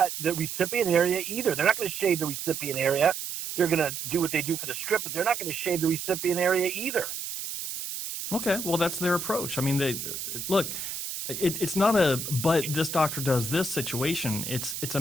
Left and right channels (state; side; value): noise; right; hiss, 6 dB below the sound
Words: the recipient area either. They're not going to shave the recipient area. They're going to do what they do for the strip, but they're not going to shave the recipient area either. Okay, well, that's their approach. I mean, it's not a but this doctor does this situation. It's a